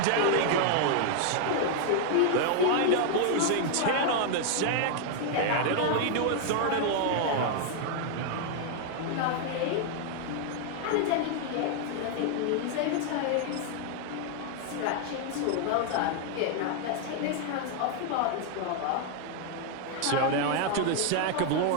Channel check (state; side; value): different; both; correlation 0.00